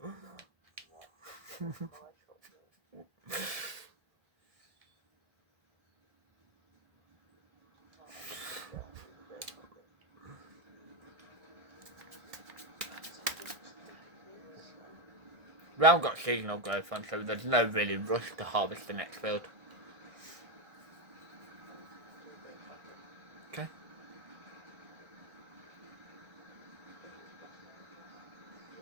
We haven't got seasonal growth on, so there's no really rush to harvest the next field. Okay.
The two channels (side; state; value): left; late; 1.5 ms